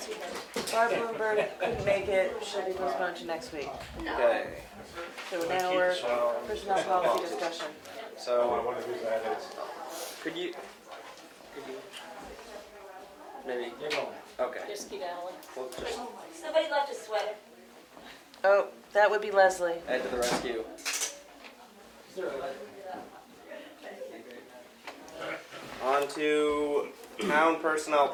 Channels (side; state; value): both; identical; correlation 1.00